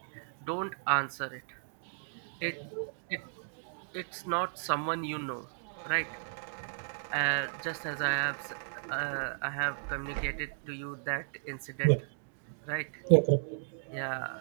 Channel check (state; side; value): silent; left; digital silence